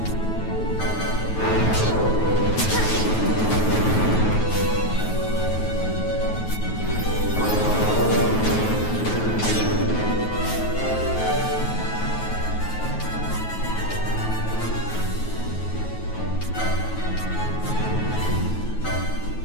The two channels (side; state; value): right; late; 9.3 ms